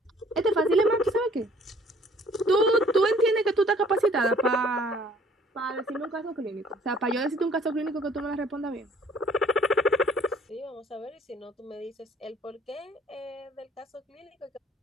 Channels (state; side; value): normal; both; correlation 0.58